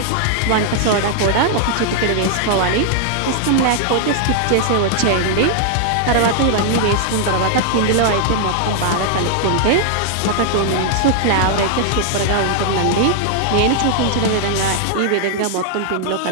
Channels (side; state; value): both; different; correlation 0.00